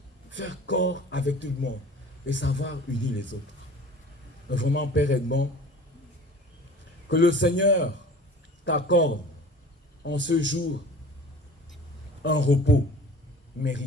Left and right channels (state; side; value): normal; both; correlation 0.43